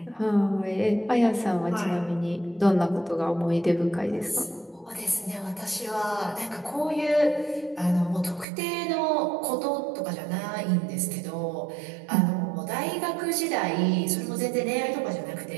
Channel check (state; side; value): drops out; left; at 8.5 s